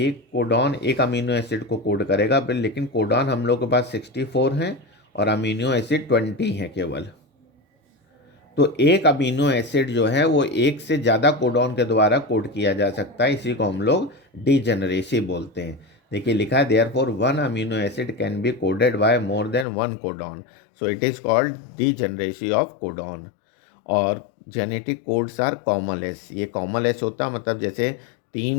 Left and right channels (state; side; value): drops out; right; at 19.7 s